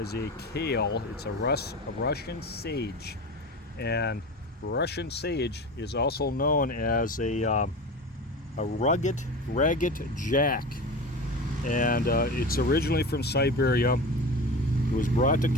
a kale. It's a Russian sage, and Russian sage is also known as a ragged jack, and it's originally from Siberia. It was brought to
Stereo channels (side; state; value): both; normal; correlation 0.30